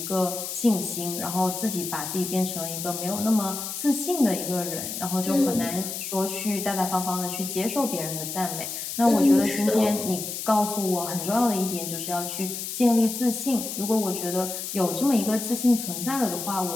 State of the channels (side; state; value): left; noise; hiss, 6 dB below the sound